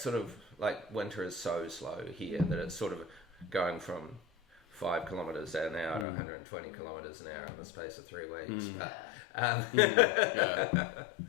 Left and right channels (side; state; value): right; drops out; at 6.1 s